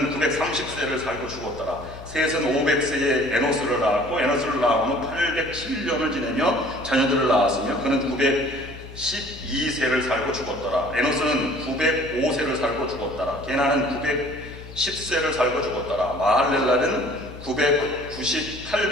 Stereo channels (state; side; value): noise; left; hum, 15 dB below the sound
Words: 930세를 살고 죽었더라. 셋은 500세에 에노스를 낳았고 에노스를 낳은 후 807년을 지내며 자녀들을 낳았으며 그는 912세를 살고 죽었더라. 에노스는 905세를 살고 죽었더라. 게나는 910세를 살고 죽었더라. 마할렐라는